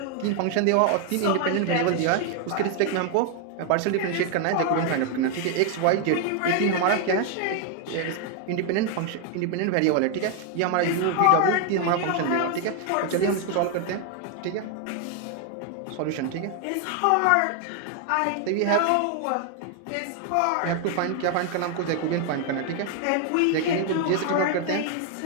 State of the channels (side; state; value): both; different; correlation 0.00